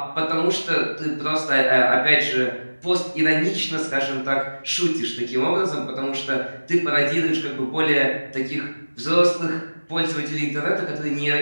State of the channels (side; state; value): both; inverted; correlation -1.00